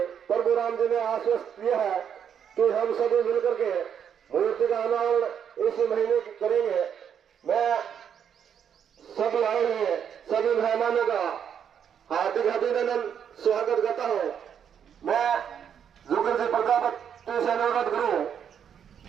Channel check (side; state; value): left; quieter; 8.2 dB